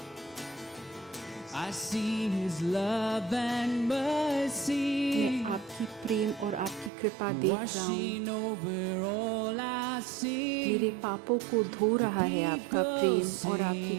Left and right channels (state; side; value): drops out; left; at 6.9 s